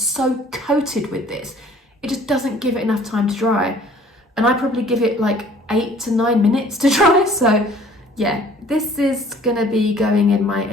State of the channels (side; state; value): both; normal; correlation 0.53